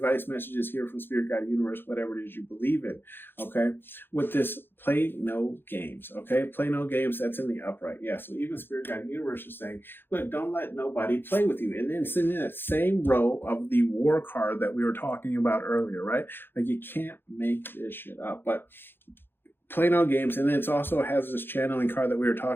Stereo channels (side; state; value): right; late; 0.10 ms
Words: messages here from Spirit Guide Universe, whatever it is you believe in, okay? With this play no games, okay? Play no games, that's in the upright. Yeah, so even Spirit Guide Universe is saying, look, don't let nobody play with you. And then it's in that same row of the war card that we were talking about earlier, right? Like, you can't make this shit up. But play no games. And then it also has this channeling card that we were